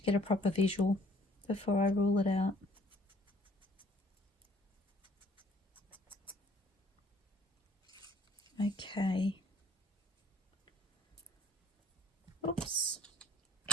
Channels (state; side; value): normal; both; correlation 0.59